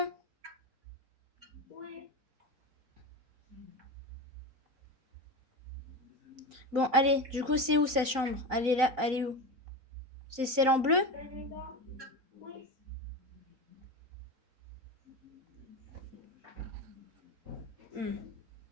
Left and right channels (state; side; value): late; left; 3.9 ms